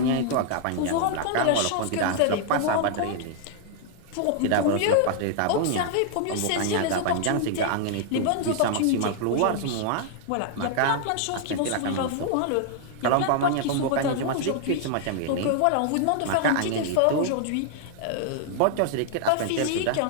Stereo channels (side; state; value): both; different; correlation -0.01